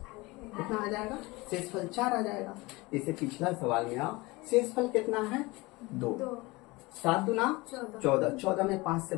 कितना आ जाएगा? शेषफल 4 आ जाएगा। इसे पिछला सवाल में आओ, शेषफल कितना है? 2। 7 दूना 14, 14 में 5 से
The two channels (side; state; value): right; quieter; 22.9 dB